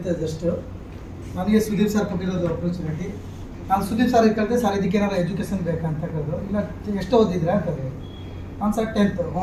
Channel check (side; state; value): both; identical; correlation 1.00